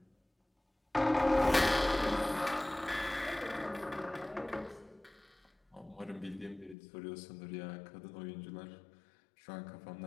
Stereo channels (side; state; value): right; drops out; at 6.8 s